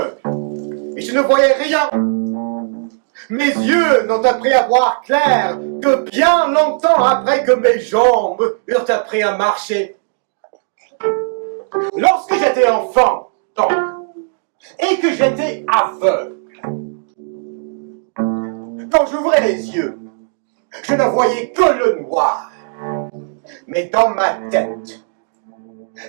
et je ne voyais rien. Mes yeux n'ont appris à voir clair que bien longtemps après que mes jambes eurent appris à marcher. Lorsque j'étais enfant, donc, et que j'étais aveugle, quand j'ouvrais les yeux, je ne voyais que le noir. Mais dans ma tête,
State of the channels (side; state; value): left; silent; digital silence